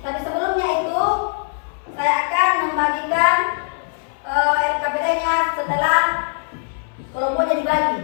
Tapi sebelumnya itu saya akan membagikan LKPD-nya setelah kelompoknya dibagi.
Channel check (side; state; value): right; silent; 60 dB below the other